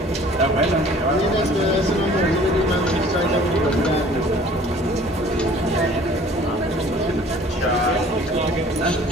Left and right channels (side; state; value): both; normal; correlation 0.51